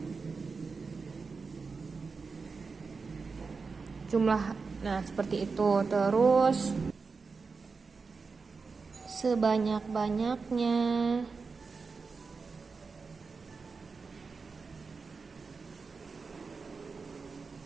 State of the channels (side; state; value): left; quieter; 4.7 dB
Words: Jumlah, nah seperti itu. Terus sebanyak-banyaknya,